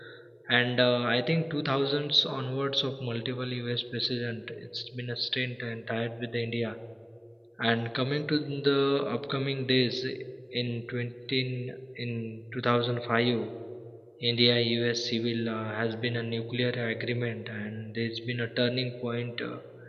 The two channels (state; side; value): identical; both; correlation 1.00